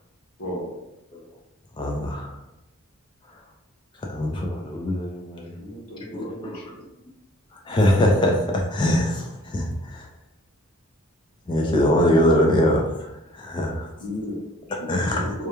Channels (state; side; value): normal; both; correlation 0.56